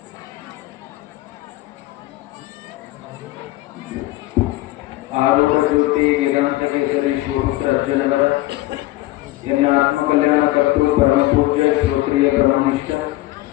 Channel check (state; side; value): quieter; right; 17.7 dB